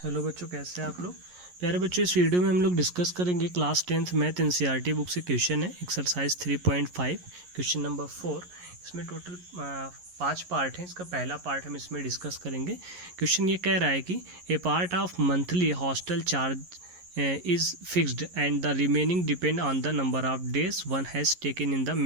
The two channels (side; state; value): left; late; 11 ms